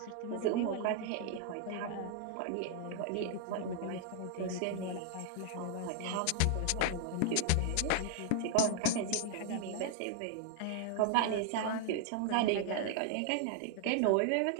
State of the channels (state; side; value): different; both; correlation 0.00